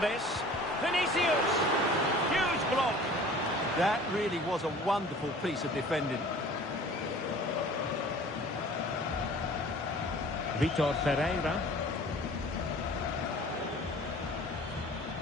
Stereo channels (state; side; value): normal; both; correlation 0.46